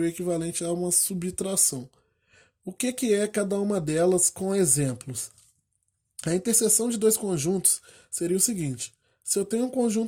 o equivalente a uma subtração. O que é cada uma delas com exemplos? A interseção de dois conjuntos seria o seguinte: se eu tenho um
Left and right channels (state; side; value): identical; both; correlation 1.00